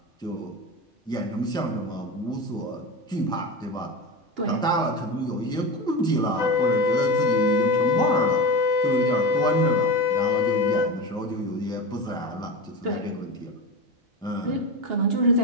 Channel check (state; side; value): normal; both; correlation 0.23